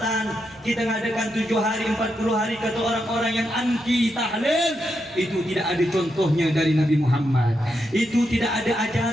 kita ngadakan 7 hari 40 hari kata orang-orang yang anti tahlil, itu tidak ada contohnya dari Nabi Muhammad, itu tidak ada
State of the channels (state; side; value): noise; right; rumble, 29 dB below the sound